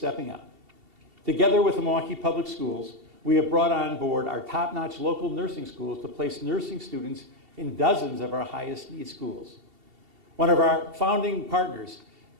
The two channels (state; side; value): late; left; 2.7 ms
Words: up. Together with the Milwaukee Public Schools, we have brought on board our top-notch local nursing schools to place nursing students in dozens of our highest need schools. One of our founding partners,